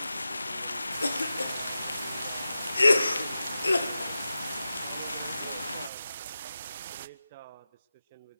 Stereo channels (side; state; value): both; inverted; correlation -0.92